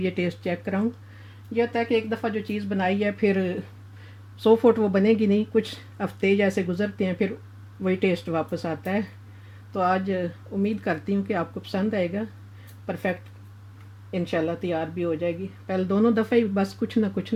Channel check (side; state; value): both; identical; correlation 1.00